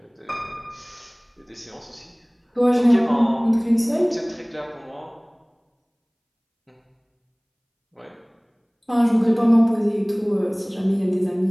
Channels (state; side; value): identical; both; correlation 1.00